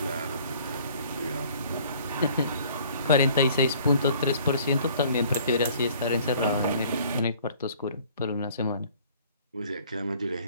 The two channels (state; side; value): inverted; both; correlation -0.54